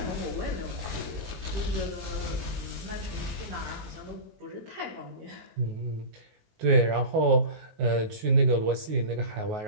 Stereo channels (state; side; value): late; left; 19 ms